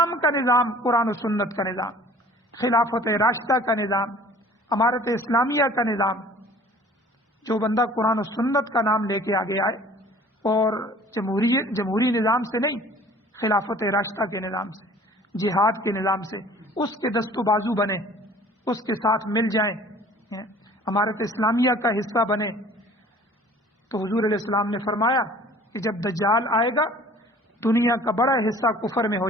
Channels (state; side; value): normal; both; correlation 0.49